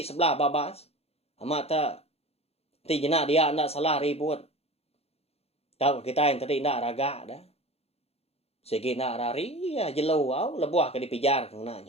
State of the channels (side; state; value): right; late; 0.29 ms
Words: sebelah babas. Amat tak ti jena dia nak salah ribut. Tahu kita yang tadi nak raga dah. Segi nak rari ya jelo au lebuah ke dipijar